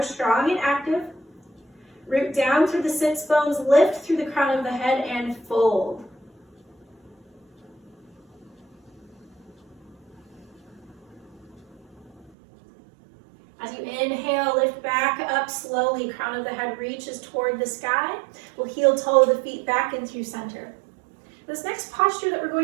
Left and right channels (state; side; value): drops out; left; at 12.3 s